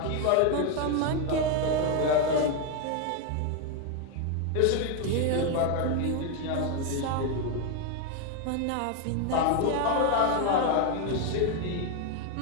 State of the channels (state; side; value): different; both; correlation 0.01